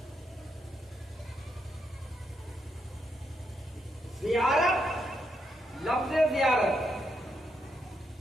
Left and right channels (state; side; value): normal; both; correlation 0.80